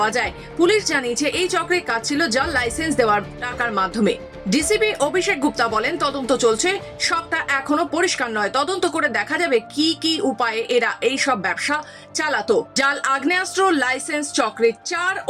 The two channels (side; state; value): both; identical; correlation 1.00